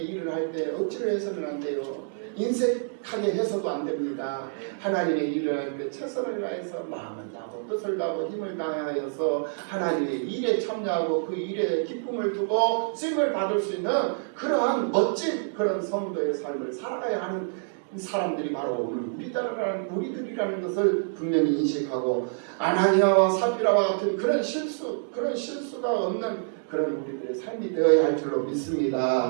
일을 할 때 억지로 해서는 안 돼요. 인색하게 해서도 안 됩니다. 하나님의 일을 할 때 최선을 다해서 마음을 다하고 뜻을 다하고 힘을 다하여서 하나님의 일에 참여하고 그 일에 기쁨을 두고 쓰임을 받을 수 있는 그러한 멋진 그런 성도의 삶을 살아가야 하는 사람들이 바로 오늘 우리들이라는 것을 분명히 인식하고 아나니아와 사피라와 같은 그런 실수가 없는 그런 우리들의 삶이 되어야 할 줄로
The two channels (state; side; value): silent; left; digital silence